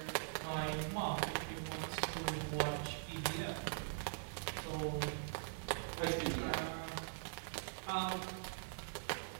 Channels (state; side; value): silent; left; digital silence